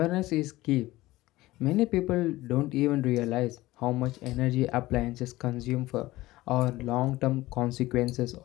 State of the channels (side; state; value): right; quieter; 18.0 dB